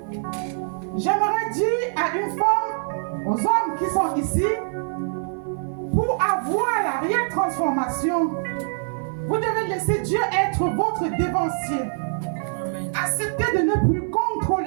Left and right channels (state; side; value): silent; left; 58 dB below the other